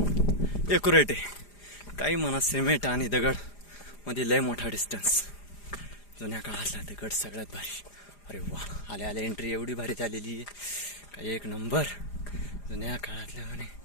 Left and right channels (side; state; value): right; late; 4.9 ms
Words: एक्युरेट आहे। काही म्हणा सिमेंट आणि दगड मध्ये लय मोठा डिस्टन्स। जुन्या काळातला दगड सगळ्यात भारी। अरे वा, आल्या आल्या एंट्री एवढी भारी झालेली आहे, काही एक नंबर। जुन्या काळातल्या म्हणे